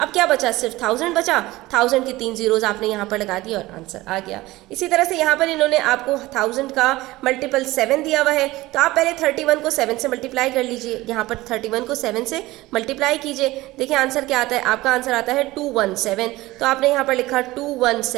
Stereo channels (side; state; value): left; quieter; 18.7 dB